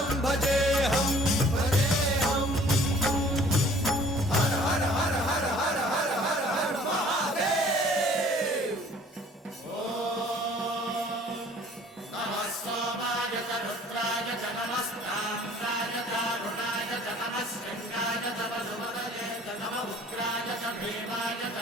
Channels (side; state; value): both; normal; correlation 0.53